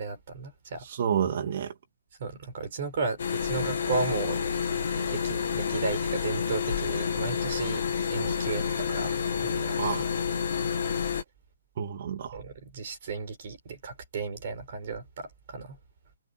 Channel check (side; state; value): both; inverted; correlation -0.65